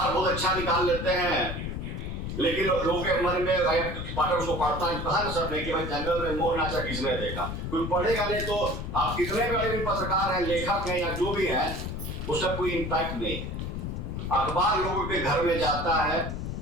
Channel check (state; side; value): noise; left; rumble, 5 dB below the sound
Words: बहुत अच्छा निकाल लेते हैं, लेकिन लोगों के मन में पाठक उसको पढ़ता है, कहा सब नहीं कि भाई जंगल में मोर नाचा किसने देखा, कोई पढ़ेगा नहीं। तो आप कितने बड़े भी पत्रकार हैं, लेखक हैं या जो भी हैं, उसका कोई इम्पैक्ट नहीं है। अखबार लोगों के घर में जाता है,